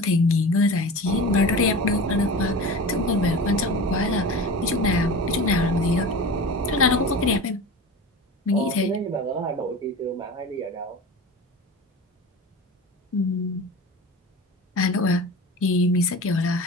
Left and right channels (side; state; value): both; normal; correlation 0.32